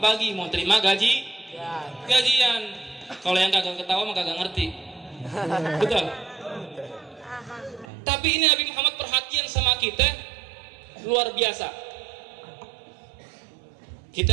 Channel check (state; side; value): drops out; left; at 7.9 s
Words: mau terima gajian. Kalau yang kagak ketawa mah kagak ngerti. Betul. Tapi ini Nabi Muhammad perhatian sama kita luar biasa. Kita